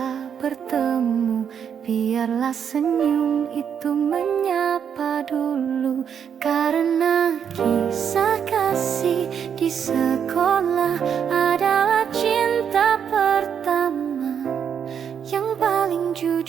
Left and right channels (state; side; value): quieter; left; 7.8 dB